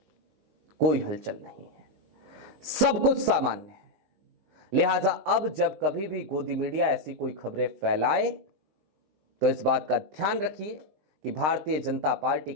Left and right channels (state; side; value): late; left; 20 ms